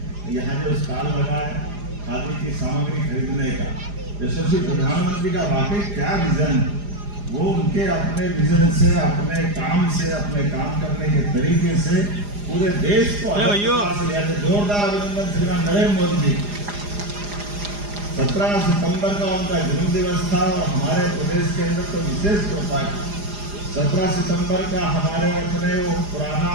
यहाँ जो स्टॉल लगा है खादी की सामग्री खरीदने का, यशस्वी प्रधानमंत्री का वाकई क्या विजन, वो उनके अपने विजन से, अपने काम से, अपने काम करने के तरीके से पूरे देश को जोरदार अभिनंदन श्रीमान नरेंद्र मोदी जी। 17 सितंबर का उनका जन्म दिवस था और हमारे प्रदेश के अंदर तो विशेष होता है। 17 सितंबर का हमारे अपने वो पुराना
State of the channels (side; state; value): left; late; 4.9 ms